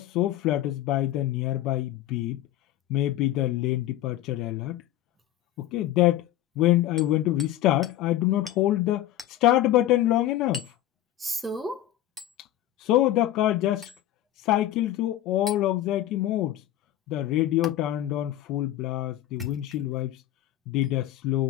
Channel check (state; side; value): quieter; right; 13.2 dB